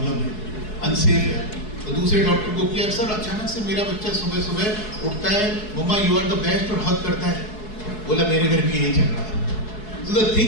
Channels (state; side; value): late; right; 4.7 ms